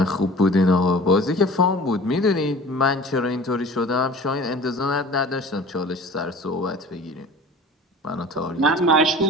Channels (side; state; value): both; normal; correlation 0.43